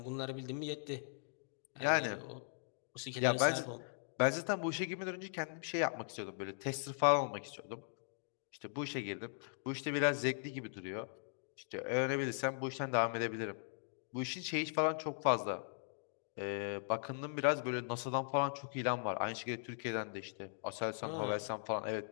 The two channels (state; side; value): silent; right; digital silence